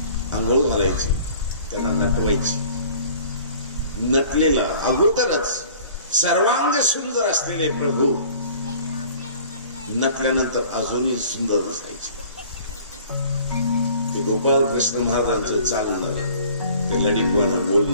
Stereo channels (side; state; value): both; inverted; correlation -0.49